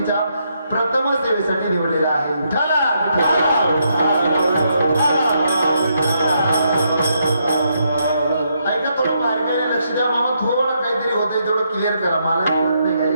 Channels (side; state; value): both; inverted; correlation -0.77